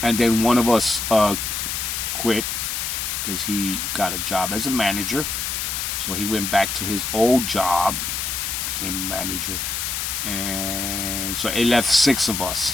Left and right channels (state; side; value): noise; left; hiss, 2 dB below the sound